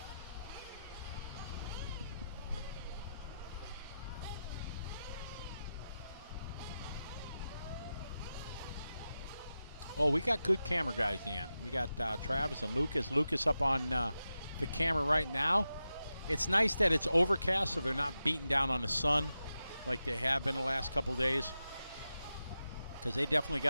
Oh, we got good camera guys, Dan. We got Travis and Lucas. Lucas up on the camera right now. It's nice that it's overcast, so they're not beating down on the sun like they have been the last couple days, because they definitely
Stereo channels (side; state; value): both; inverted; correlation -0.91